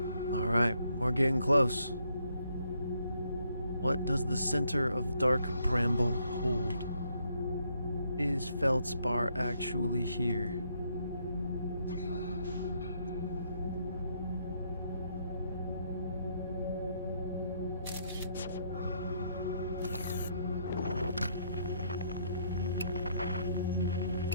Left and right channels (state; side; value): inverted; both; correlation -0.72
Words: All right, we're getting close. What does the center of dark Bramble hold? Is Feldspar actually here?